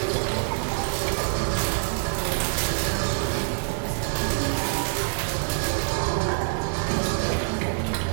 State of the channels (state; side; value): silent; left; digital silence